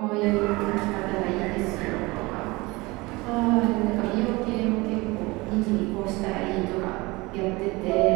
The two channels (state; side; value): quieter; left; 23.1 dB